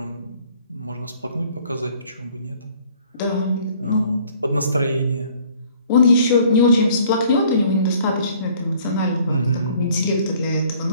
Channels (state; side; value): inverted; both; correlation -0.57